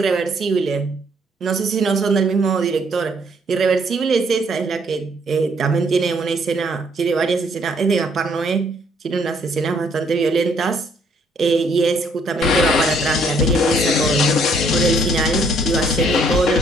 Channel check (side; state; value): both; normal; correlation 0.66